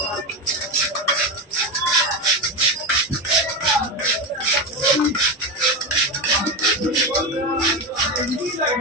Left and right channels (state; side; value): normal; both; correlation 0.16